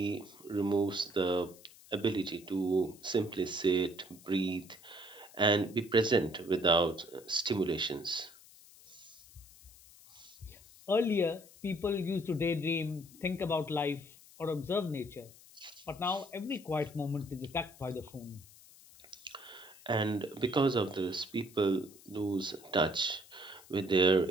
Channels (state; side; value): noise; left; hiss, 22 dB below the sound